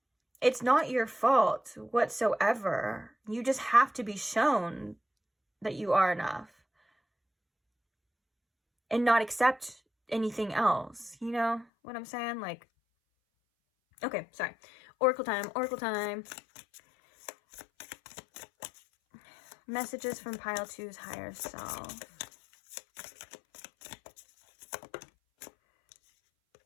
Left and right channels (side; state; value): right; drops out; at 11.7 s